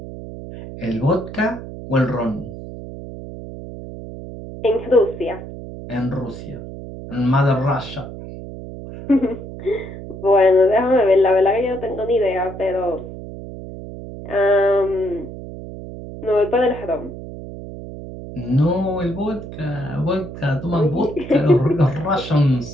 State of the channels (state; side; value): noise; right; hum, 12 dB below the sound